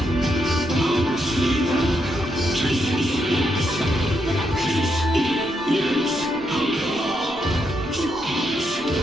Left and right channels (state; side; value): noise; left; rumble, 21 dB below the sound